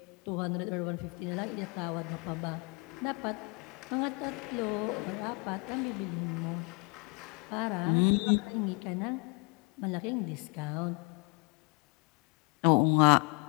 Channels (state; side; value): quieter; right; 30.5 dB